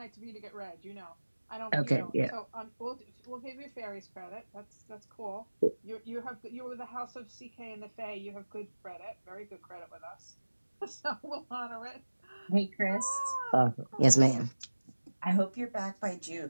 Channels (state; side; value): inverted; both; correlation -1.00